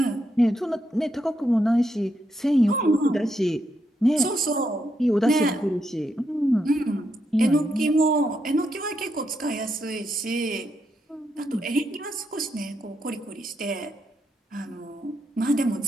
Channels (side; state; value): both; normal; correlation 0.81